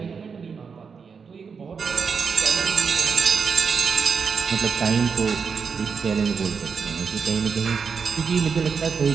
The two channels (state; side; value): quieter; left; 5.8 dB